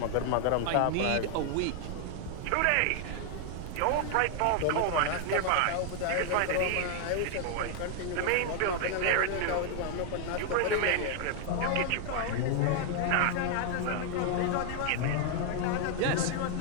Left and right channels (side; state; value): both; different; correlation 0.00